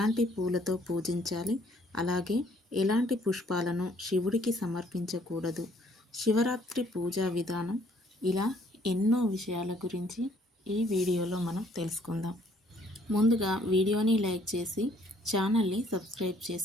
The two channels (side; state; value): both; normal; correlation 0.63